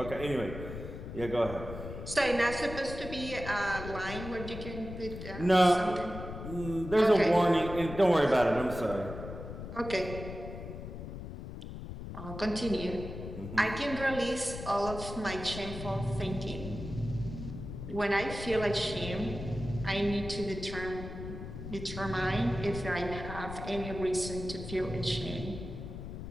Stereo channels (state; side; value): noise; left; rumble, 9 dB below the sound